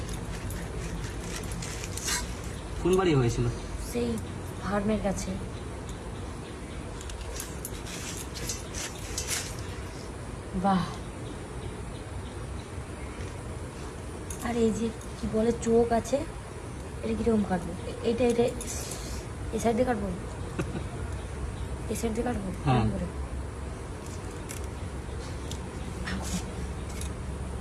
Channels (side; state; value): both; identical; correlation 1.00